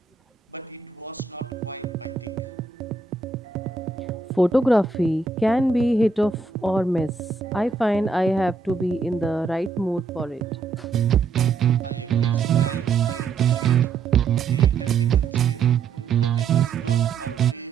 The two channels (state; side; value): quieter; left; 4.7 dB